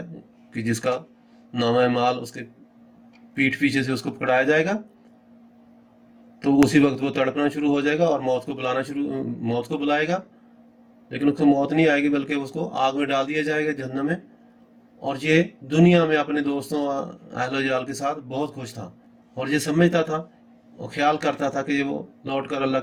کہ جس کا نامہ مال اس کے پیٹھ پیچھے سے اس کو پکڑایا جائے گا تو اسی وقت وہ تڑپنا شروع ہو جائے گا اور موت کو بلائے گا، لیکن اس کو موت نہیں آئے گی بلکہ اس کو آگ میں ڈال دیا جائے گا جہنم میں۔ اور یہ دنیا میں اپنے دوستوں اہل و عیال کے ساتھ بہت خوش تھا اور یہ سمجھتا تھا और ख्याल करता था कि वो लौट कर अल्लाह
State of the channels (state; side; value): identical; both; correlation 1.00